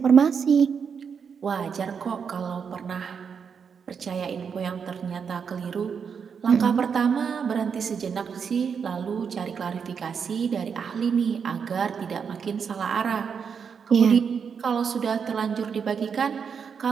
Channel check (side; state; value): left; quieter; 6.5 dB